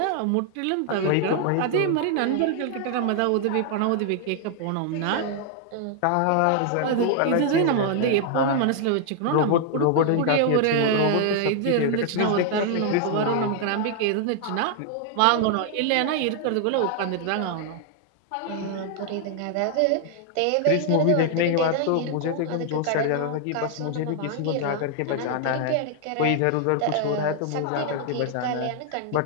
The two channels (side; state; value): both; different; correlation 0.00